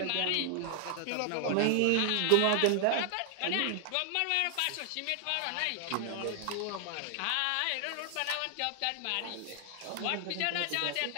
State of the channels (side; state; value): both; different; correlation 0.00